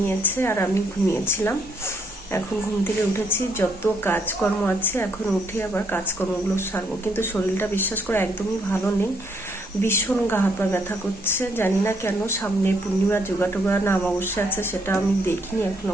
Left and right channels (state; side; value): normal; both; correlation 0.70